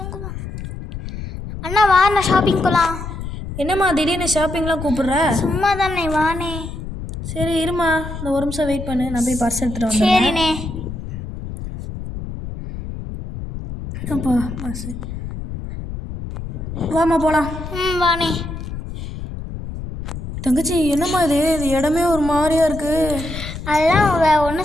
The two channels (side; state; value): left; noise; rumble, 8 dB below the sound